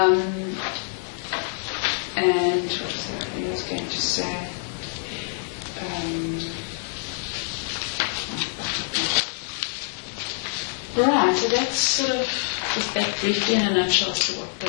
And what was that I was going to say? Right, so that's sort of just that briefly in a nutshell as to what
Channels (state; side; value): silent; right; 61 dB below the other